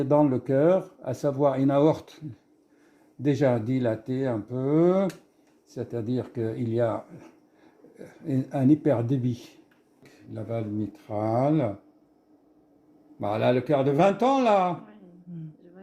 dans le cœur, à savoir une aorte déjà dilatée un peu. C'est-à-dire qu'il y a un hyperdébit. La valve mitrale. Voilà, le cœur de 20 ans, là. Oui, je vois,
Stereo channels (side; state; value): both; identical; correlation 1.00